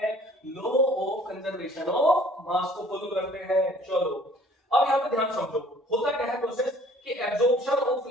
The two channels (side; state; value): both; normal; correlation 0.54